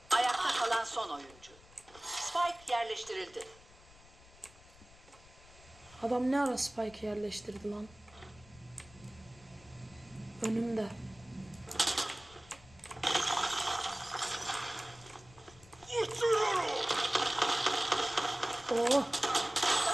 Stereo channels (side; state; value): left; noise; rumble, 23 dB below the sound